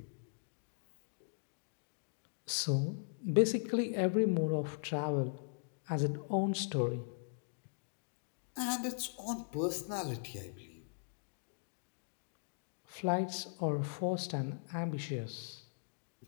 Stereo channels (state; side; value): silent; right; digital silence